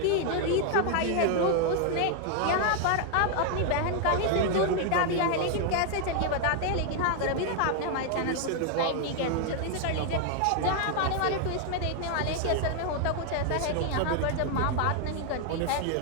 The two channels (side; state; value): both; different; correlation 0.00